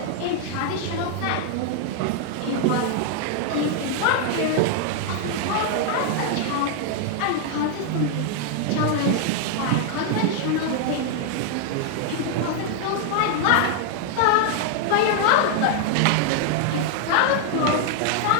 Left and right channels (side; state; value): both; different; correlation 0.00